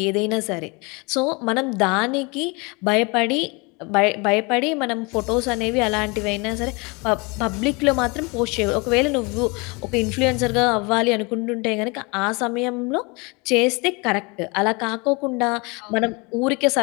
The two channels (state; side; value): quieter; right; 28.4 dB